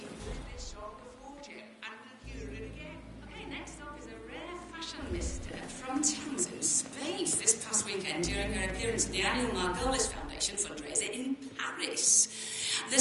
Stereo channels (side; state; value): both; identical; correlation 1.00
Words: this song a fortune and we'll hear it again. Okay, next up is a rare fashion mister from Townsend Space this past weekend during her appearance at the annual Margolis Foundation fundraiser in Paris. The